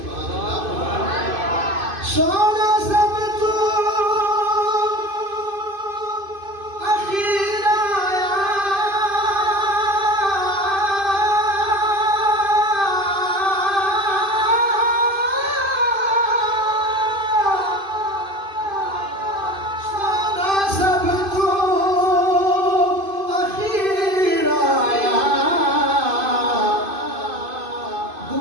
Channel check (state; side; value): late; left; 2.5 ms